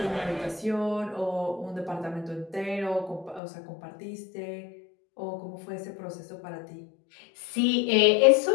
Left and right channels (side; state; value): right; drops out; at 3.4 s